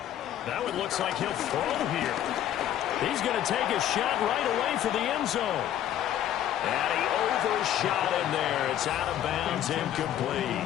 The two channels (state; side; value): quieter; right; 11.4 dB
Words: Now it looks like he'll throw here. He's going to take a shot right away for the end zone. And he overshot him there. It's out of bounds, incomplete.